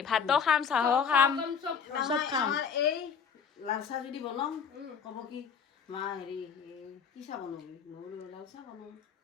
ভাতো খাম চাহো খাম চব খাম এই লাল চাহ যদি বনাম ক'ব কি মা হেৰি কি চাহ বনাবি নহ'লে লাল চাহ বনাম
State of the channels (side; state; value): right; quieter; 6.6 dB